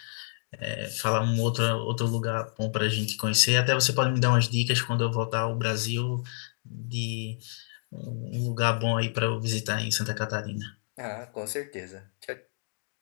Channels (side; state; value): right; silent; digital silence